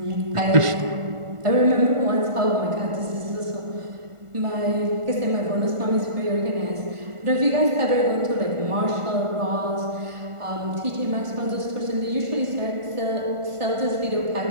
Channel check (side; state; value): left; late; 1.5 ms